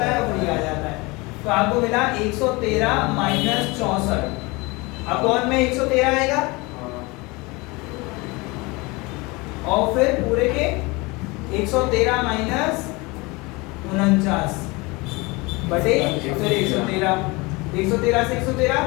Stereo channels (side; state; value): right; quieter; 24.9 dB